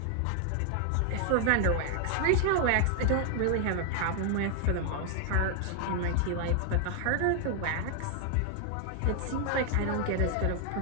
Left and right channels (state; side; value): different; both; correlation 0.00